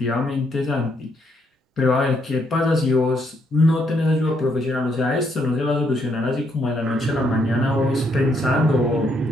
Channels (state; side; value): normal; both; correlation 0.73